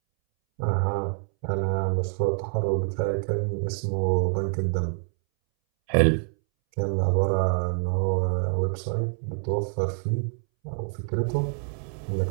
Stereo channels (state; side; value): silent; left; 61 dB below the other